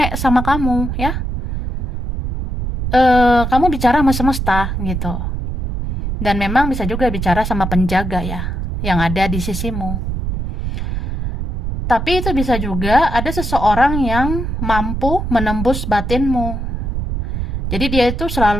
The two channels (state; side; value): noise; right; rumble, 3 dB below the sound